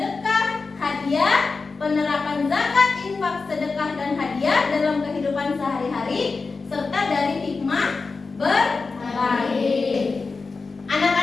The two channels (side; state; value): right; quieter; 4.3 dB